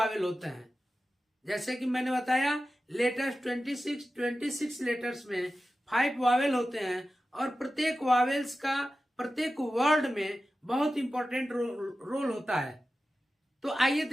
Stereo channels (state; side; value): normal; both; correlation 0.94